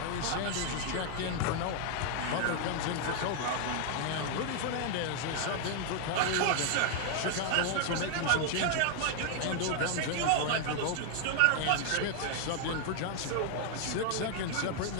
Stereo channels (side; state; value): both; different; correlation 0.00